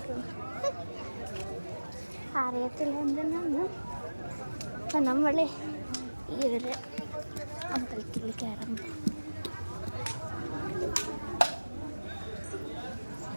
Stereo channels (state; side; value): inverted; both; correlation -1.00